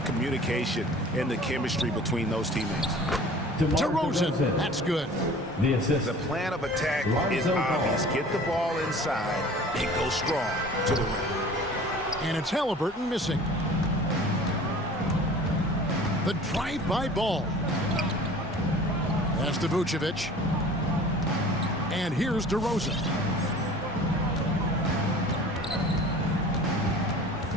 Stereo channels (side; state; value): both; normal; correlation 0.45